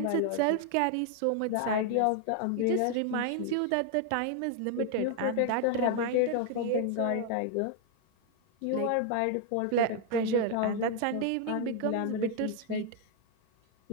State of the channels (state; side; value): different; both; correlation 0.00